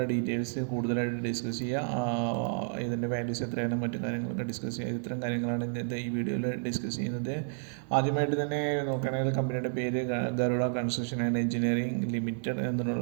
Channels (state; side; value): silent; left; 57 dB below the other